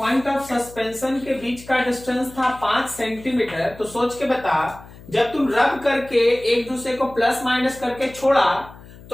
ऑफ सस्पेंशन के बीच का डिस्टेंस था 5 सेंटीमीटर, तो सोच के बता, जब तुम रब करके एक दूसरे को प्लस माइनस करके छोड़ा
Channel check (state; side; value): noise; left; hum, 19 dB below the sound